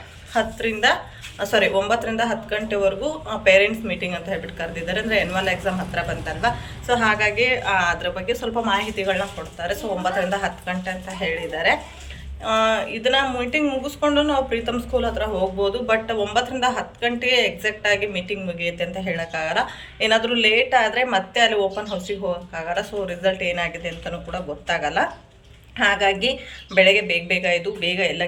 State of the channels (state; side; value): identical; both; correlation 1.00